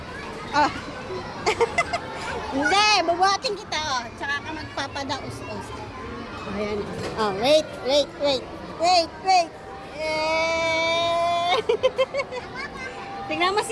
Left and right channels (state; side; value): identical; both; correlation 1.00